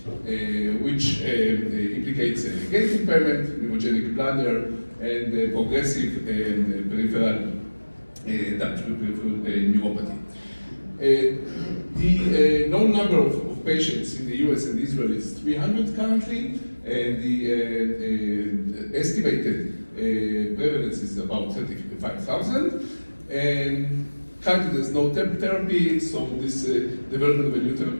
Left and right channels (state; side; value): inverted; both; correlation -1.00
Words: which implicates gait impairment, neurogenic bladder, and progressive peripheral damage, peripheral neuropathy. The known number of patients in the US and Israel is 300 currently, and the estimated prevalence is about 35,000. And currently there's no therapy, so this development of a new